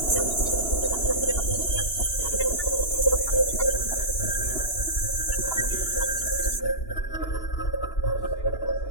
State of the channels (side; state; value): right; late; 2.9 ms